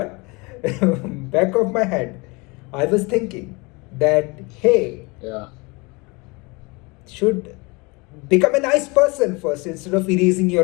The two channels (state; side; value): quieter; right; 26.9 dB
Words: back of my head, I was thinking that, hey, Yeah. should become a nice person first instead of erasing